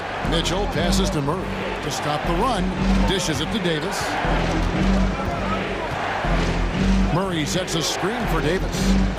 Mitchell passes to Murray to stop the run. Dishes it to Davis. Murray sets a screen for Davis.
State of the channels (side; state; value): both; identical; correlation 1.00